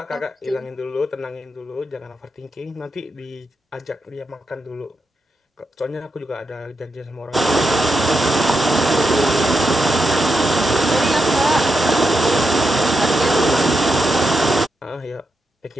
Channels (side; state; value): both; normal; correlation 0.85